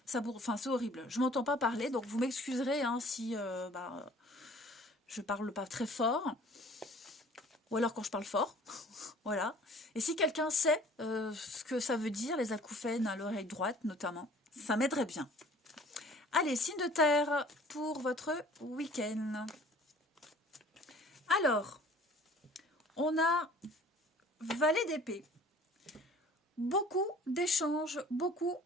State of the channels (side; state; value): both; normal; correlation 0.51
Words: Enfin, c'est horrible. Je ne m'entends pas parler, donc vous m'excuserez hein, si... je parle pas très fort, ou alors quand je parle fort, voilà. Et si quelqu'un sait ce que ça veut dire, les acouphènes à l'oreille droite notamment, ça m'aiderait bien. Allez, signe de terre pour votre week-end. Alors, on a valet d'épée. Beaucoup d'échanges, beaucoup